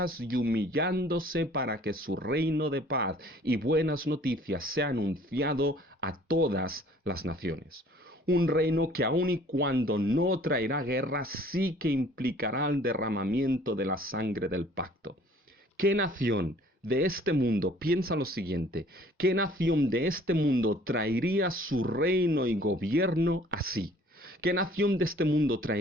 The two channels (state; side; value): normal; both; correlation 0.54